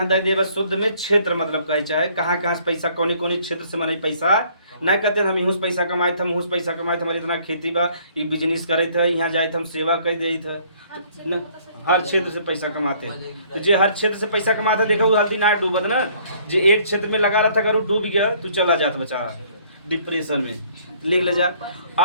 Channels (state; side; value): inverted; both; correlation -0.60